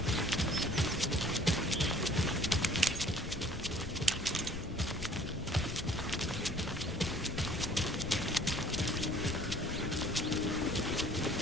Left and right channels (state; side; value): noise; left; rumble, 12 dB below the sound